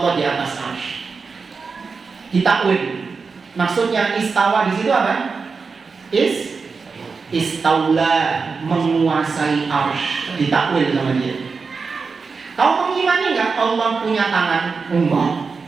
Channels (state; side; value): quieter; left; 4.8 dB